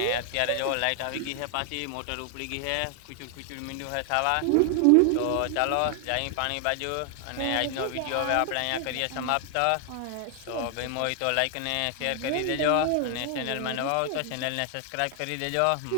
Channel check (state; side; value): different; both; correlation 0.00